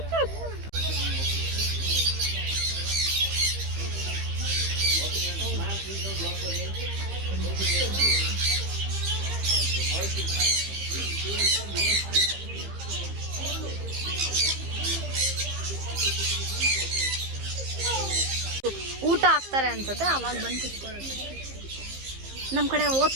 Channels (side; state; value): left; late; 15 ms